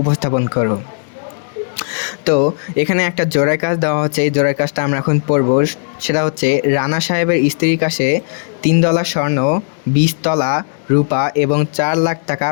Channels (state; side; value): silent; right; digital silence